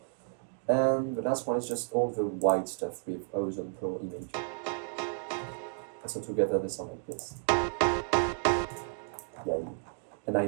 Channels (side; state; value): left; silent; digital silence